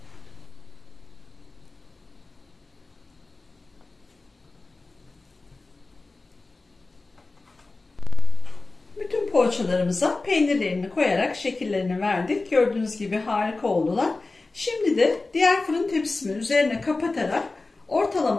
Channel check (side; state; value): right; quieter; 3.4 dB